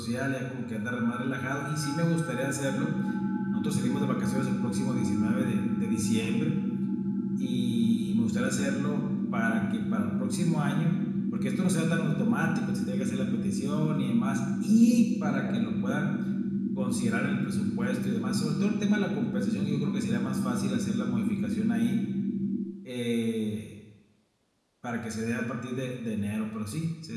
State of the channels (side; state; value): both; identical; correlation 1.00